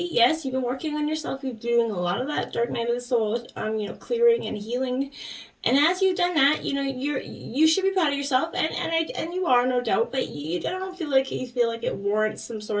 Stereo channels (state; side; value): identical; both; correlation 1.00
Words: Yes, you've been working on yourself. You're doing a lot of that dark night of the soul, clearing and healing. And as you've done that, you should be proud of yourself, and you are, no doubt. But you don't feel like it warrants some